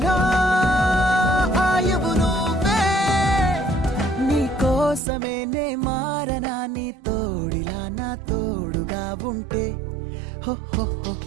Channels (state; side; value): drops out; left; at 5.0 s